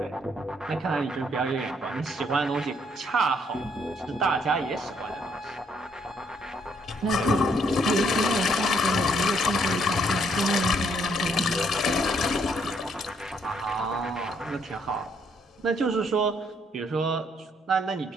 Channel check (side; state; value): both; normal; correlation 0.70